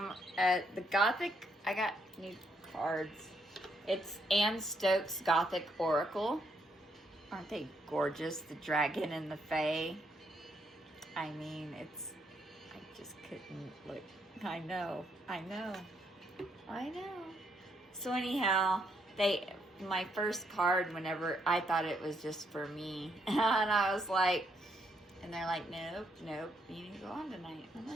at the Gothic, I got new cards. It's Anne Stokes Gothic Oracle. Aren't they gorgeous? The dragon and the fae. I mean, I just couldn't I know. I know. I know. So anyhow, my first card, whenever I thought it was just for me, and I was like, and they're like, nope, you need to go on tonight. I'm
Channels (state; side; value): normal; both; correlation 0.74